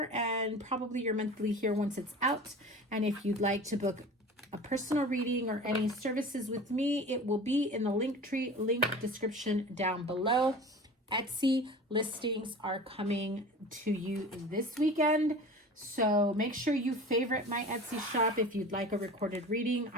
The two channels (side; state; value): both; normal; correlation 0.37